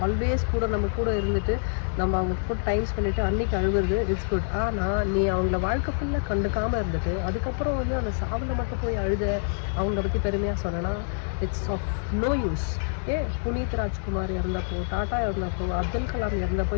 ஆல்வேஸ் கூட நம்ம கூட இருந்துட்டு நம்ம அவங்க கூட டைம் ஸ்பெண்டிட்டு அன்னைக்கு அழுவுறது இட்ஸ் குட். ஆனால் நீ அவங்கள வாழ்க்கை ஃபுல்லாக கண்டுக்காமல் இருந்துட்டு அதுக்கப்புறம் வந்து அந்த சாவில் மட்டும் போய் அழுத அவங்கள பற்றி பெருமையாக சொன்னேன்னா it's of no use. Puneeth Rajkumar இறந்தப்போ, டாட்டா இறந்தப்போ, அப்துல் கலாம் இறந்தப்போ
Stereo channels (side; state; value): right; silent; 58 dB below the other